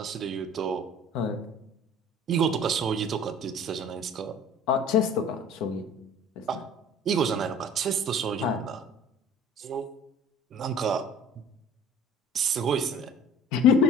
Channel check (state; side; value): normal; both; correlation 0.46